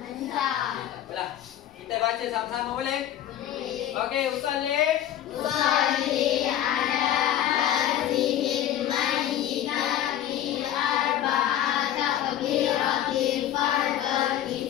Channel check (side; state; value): right; quieter; 11.6 dB